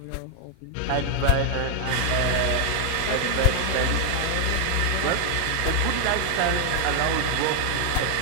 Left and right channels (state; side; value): different; both; correlation 0.00